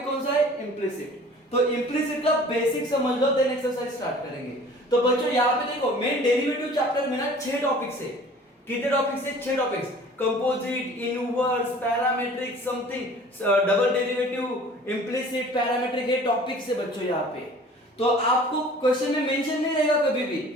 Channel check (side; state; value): both; normal; correlation 0.47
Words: कौन सा है? इम्प्लिसिट। तो इम्प्लिसिट का बेसिक समझ लो, देन एक्सरसाइज स्टार्ट करेंगे। तो बच्चों, यहाँ पे देखो, मेन डेरिवेटिव चैप्टर में ना 6 टॉपिक्स है। कितने टॉपिक्स है? 6 topics. Composite, inverse, parametric, something, double derivative, implicit, parametric, ये टॉपिक्स है बच्चों यहाँ पे। तो आपको क्वेश्चन में मेंशन नहीं रहेगा कभी भी